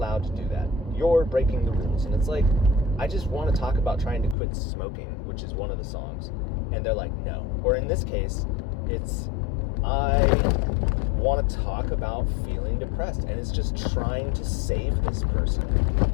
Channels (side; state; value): right; drops out; at 4.4 s